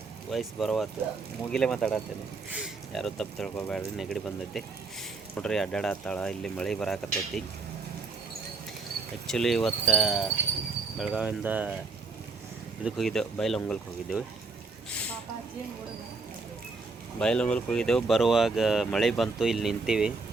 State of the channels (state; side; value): quieter; left; 4.1 dB